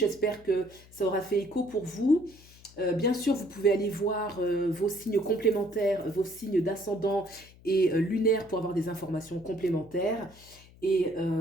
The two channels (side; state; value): left; noise; hum, 24 dB below the sound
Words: que ça aura fait écho pour vous. Bien sûr, vous pouvez aller voir vos signes complémentaires, vos signes d'ascendant et lunaire pour avoir des informations complémentaires. Et